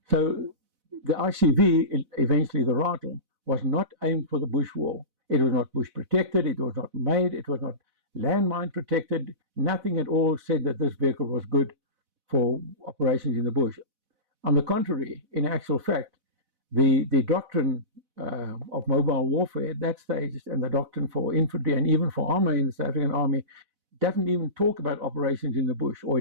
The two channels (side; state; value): left; late; 4.0 ms